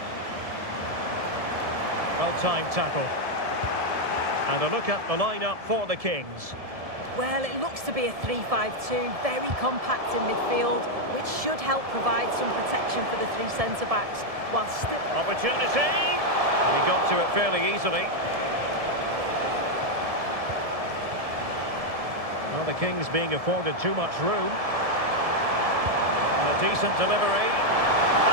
Well-timed tackle. And a look at the lineup for the Kings. Well, it looks to be a 3-5-2, very compact in midfield, which should help provide some protection for the three centre-backs, while still... Opportunity! And he got to it fairly easily. Well, the Kings being afforded too much room. And a decent delivery.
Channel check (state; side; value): late; left; 1.7 ms